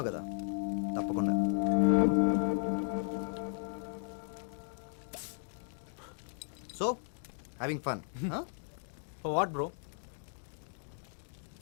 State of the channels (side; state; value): right; silent; 54 dB below the other